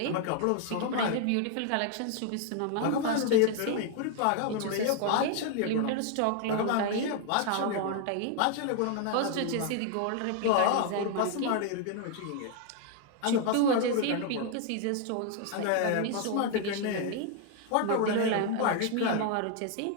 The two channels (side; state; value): both; different; correlation 0.00